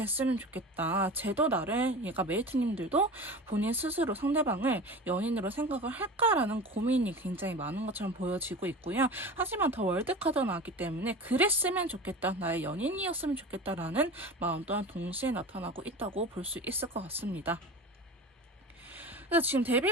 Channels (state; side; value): normal; both; correlation 0.33